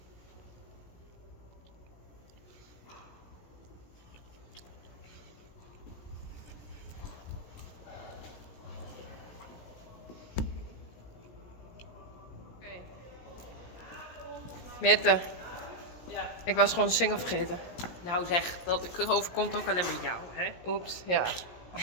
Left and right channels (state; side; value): late; right; 17 ms